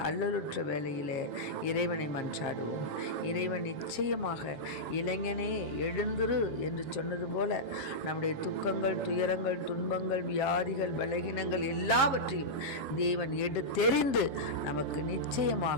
அல்லலுற்ற வேளையிலே இறைவனை மன்றாடுவோம். இறைவன் நிச்சயமாக இளைஞனே எழுந்திரு என்று சொன்னது போல நம்முடைய துக்கங்கள், துயரங்கள், துன்பங்கள், வியாதிகள், பலகீனங்கள் எல்லாவற்றையும் தேவன் எடுத்தெறிந்து நமக்கு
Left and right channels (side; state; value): right; late; 7.5 ms